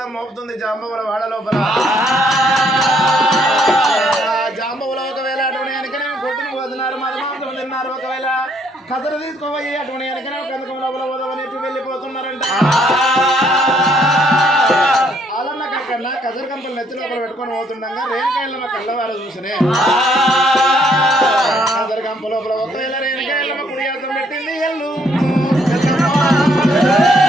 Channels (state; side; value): normal; both; correlation 0.68